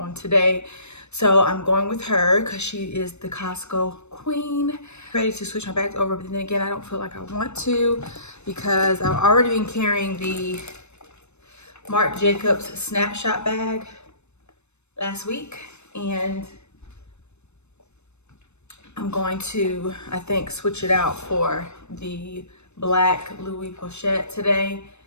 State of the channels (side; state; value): right; late; 0.81 ms